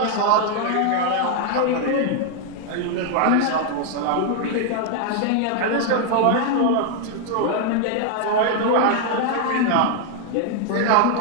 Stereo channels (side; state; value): both; different; correlation 0.00